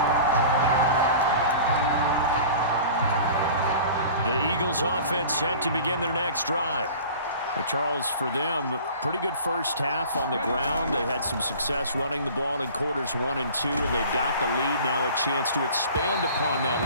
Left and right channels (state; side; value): inverted; both; correlation -0.43